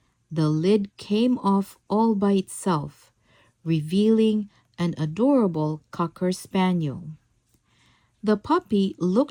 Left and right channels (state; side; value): identical; both; correlation 1.00